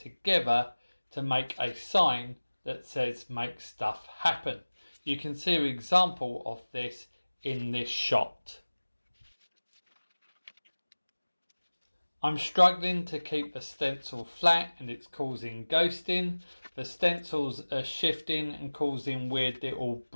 to make a sign that says make stuff happen. You can see an example of this in this shot. I'm struggling to keep the stencil flat and it's causing ghosting. The stencils are shifting and causing weird little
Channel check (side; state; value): both; inverted; correlation -1.00